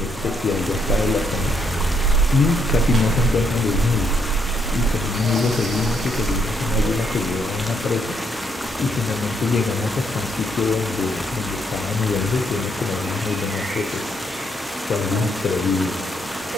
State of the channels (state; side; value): normal; both; correlation 0.74